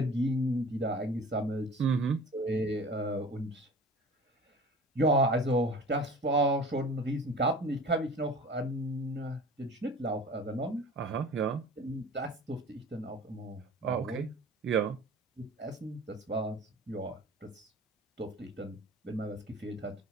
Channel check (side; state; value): both; normal; correlation 0.40